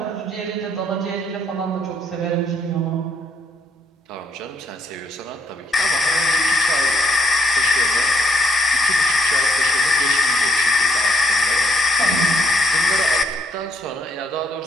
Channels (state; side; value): normal; both; correlation 0.72